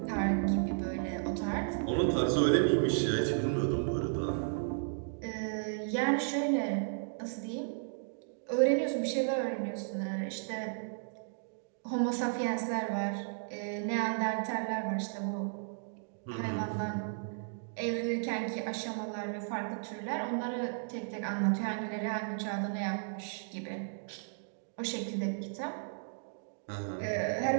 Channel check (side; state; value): left; silent; digital silence